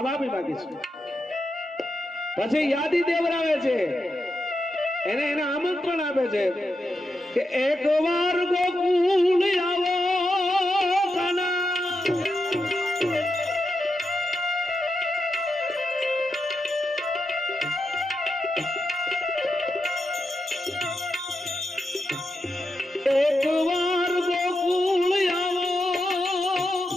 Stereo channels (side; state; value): both; normal; correlation 0.86